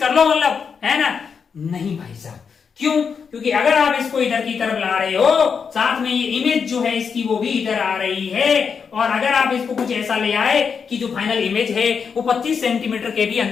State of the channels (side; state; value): right; quieter; 6.2 dB